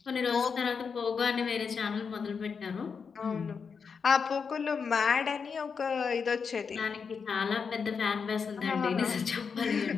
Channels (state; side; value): quieter; right; 5.8 dB